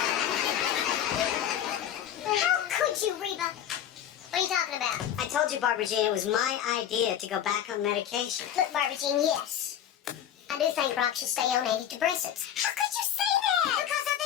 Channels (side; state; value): right; quieter; 10.1 dB